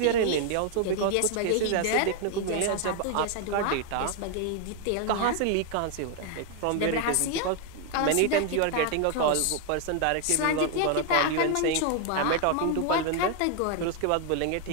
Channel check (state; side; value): different; both; correlation 0.00